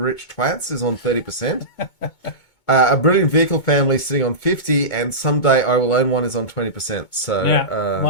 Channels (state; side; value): late; right; 2.2 ms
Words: twats is on 30%. A brilliant vehicle family sitting on 50%, and someday I will own one is on 20%. So yeah,